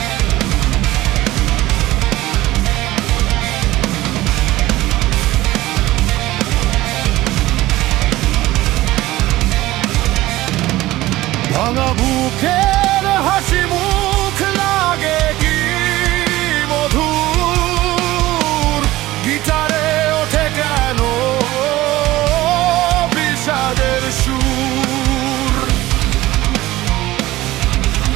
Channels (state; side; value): quieter; left; 17.1 dB